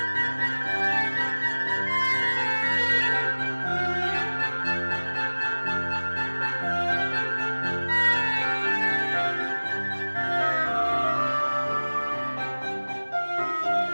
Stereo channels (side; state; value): both; inverted; correlation -1.00